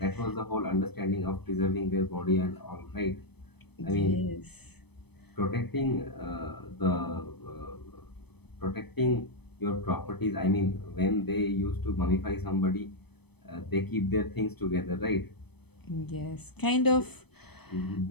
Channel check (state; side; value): late; right; 0.98 ms